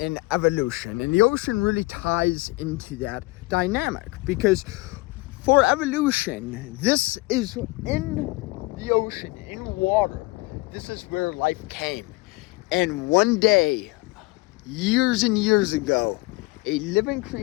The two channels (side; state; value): right; quieter; 23.1 dB